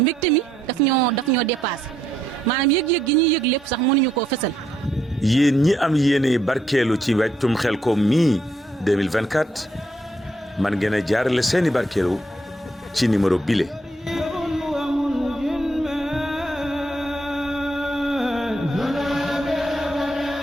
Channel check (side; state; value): both; normal; correlation 0.75